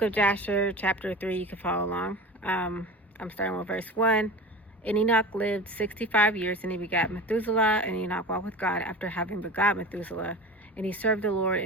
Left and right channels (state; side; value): normal; both; correlation 0.34